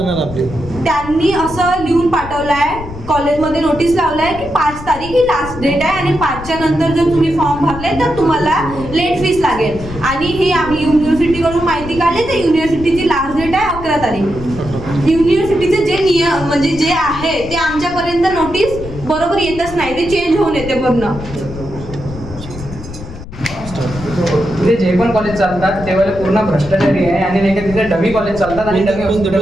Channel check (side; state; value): left; noise; rumble, 12 dB below the sound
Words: आपली. त्यांनी असं लिहून पाठवलं आहे, कॉलेजमध्ये नोटीस लावलं आहे की 5 तारीख ही लास्ट डेट आहे आणि 5च्या नंतर जर तुम्ही फॉर्म भरले तर तुम्हाला लेट फीस लागेल. आणि हे आम्ही युनिव्हर्सिटीकडून माहिती काढली तर युनिव्हर्सिटीची लास्ट डेट आहे 11 तारीख. युनिव्हर्सिटीचे जे नियम म्हणजे जे आहे ते आमच्यापर्यंत नोटीस बरोबर येतच नाही, ते चेंज होऊन येते पूर्ण. तिथे जे पण कॉलेज चालतात तेव्हा पूर्ण भ्रष्टाचारी आहे आणि नाही का तिथे डमी कॉलेज चालतात आणि dummy